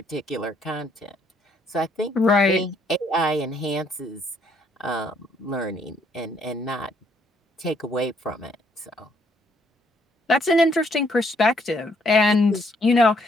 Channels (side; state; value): both; normal; correlation 0.68